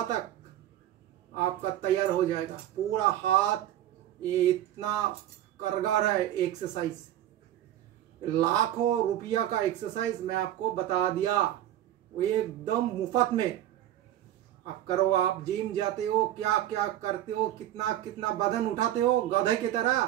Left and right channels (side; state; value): left; quieter; 12.7 dB